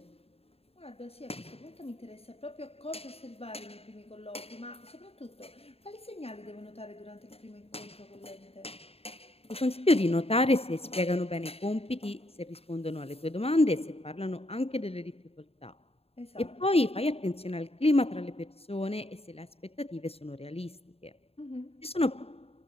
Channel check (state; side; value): late; right; 0.29 ms